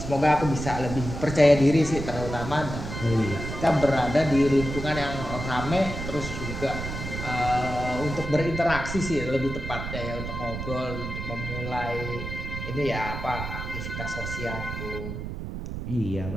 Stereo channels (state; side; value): noise; right; rumble, 7 dB below the sound